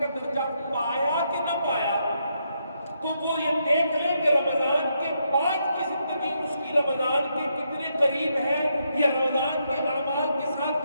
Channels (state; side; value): inverted; both; correlation -0.79